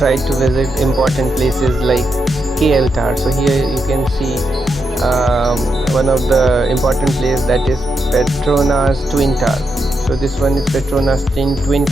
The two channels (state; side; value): normal; both; correlation 0.84